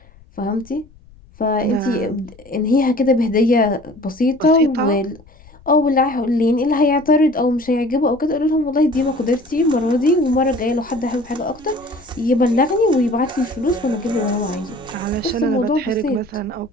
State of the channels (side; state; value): left; noise; rumble, 25 dB below the sound